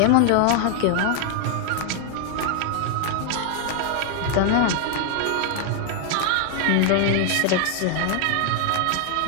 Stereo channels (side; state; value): both; different; correlation 0.00